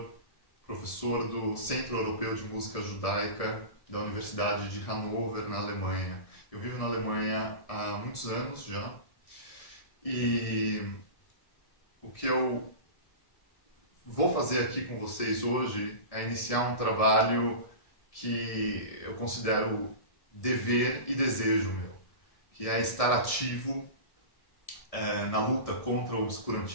professor do Centro Europeu de Música Judaica da Universidade de Hannover, na Alemanha. Eu vivo na Alemanha há muitos anos já e o que eu vou fazer aqui com vocês hoje é iniciar um trabalho que eu considero dever e desejo meu, que é estar ativo na luta contra o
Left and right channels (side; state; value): right; late; 1.6 ms